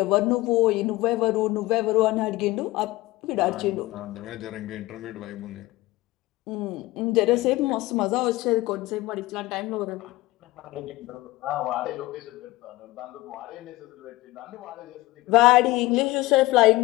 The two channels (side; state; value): right; quieter; 19.1 dB